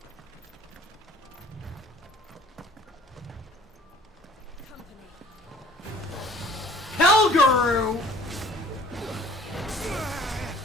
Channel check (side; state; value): both; normal; correlation 0.52